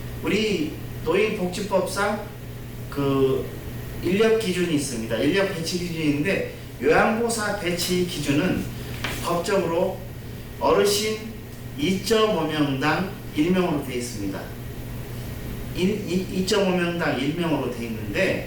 우리 노인복지법상 그 인력 기준이 있습니다. 인력 배치 기준인데 요양보호사 배치 기준은 법적으로 어르신 2.5명당 1명으로 되어 있습니다. 2.5명당 1명으로 되어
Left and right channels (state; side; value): identical; both; correlation 1.00